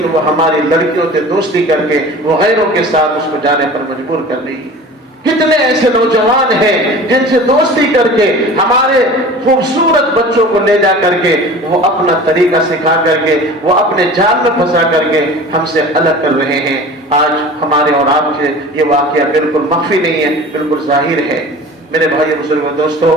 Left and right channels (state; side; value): normal; both; correlation 0.39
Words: وہ ہماری لڑکیوں سے دوستی کر کے وہ غیروں کے ساتھ اس کو جانے پر مجبور کر رہی ہے۔ کتنے ایسے نوجوان ہیں جن سے دوستی کر کے ہمارے خوبصورت بچوں کو لے جا کر کے وہ اپنا طریقہ سکھا کر کے وہ اپنے جال میں پھنسا کر کے ہم سے الگ کر رہے ہیں۔ آج ہمارے اور آپ سے یہ واقعہ بالکل مخفی نہیں ہے، بالکل ظاہر ہے۔ میرے بھائی بزرگوں دوستو،